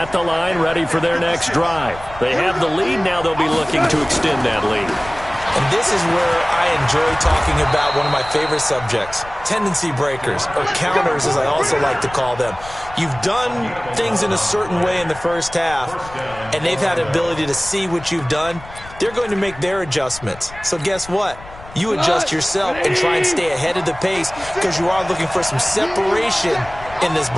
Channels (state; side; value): noise; left; rumble, 17 dB below the sound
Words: the line, ready for their next drive. They have the lead. Now they'll be looking to extend that lead. And this is where I enjoy talking about one of my favorite subjects, tendency breakers, or counters as I also like to call them. You've done things in a certain way in the first half, and they've had the ability to see what you've done. They're going to make their adjustments. So guess what? You adjust yourself and try and stay ahead of the pace because you are looking for some separation in this